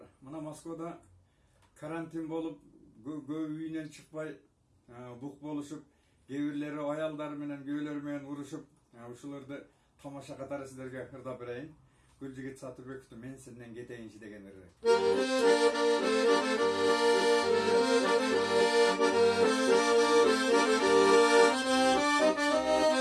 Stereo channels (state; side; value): identical; both; correlation 1.00